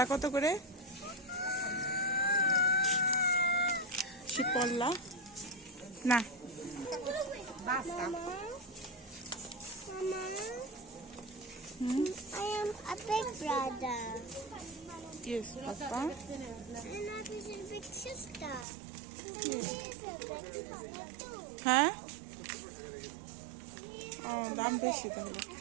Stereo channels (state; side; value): drops out; left; at 18.7 s